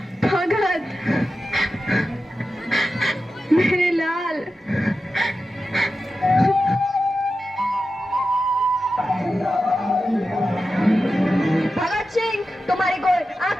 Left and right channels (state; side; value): normal; both; correlation 0.92